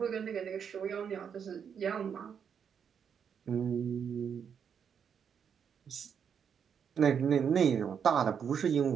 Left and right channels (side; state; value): left; quieter; 7.4 dB